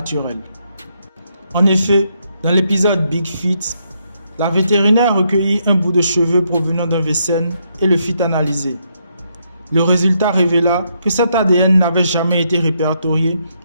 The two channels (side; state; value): both; inverted; correlation -0.76